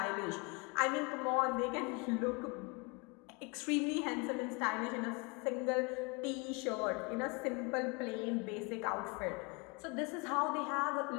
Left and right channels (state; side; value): quieter; right; 30.5 dB